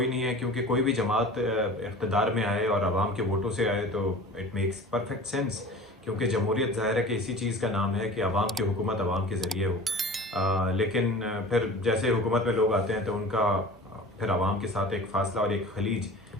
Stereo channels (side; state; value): both; normal; correlation 0.40